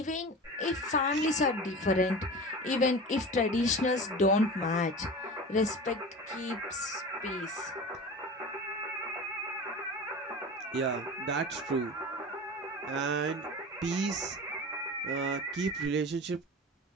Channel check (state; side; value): normal; both; correlation 0.33